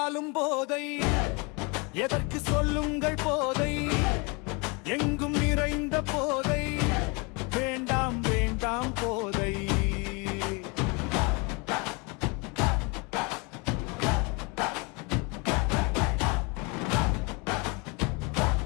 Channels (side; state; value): right; quieter; 30.2 dB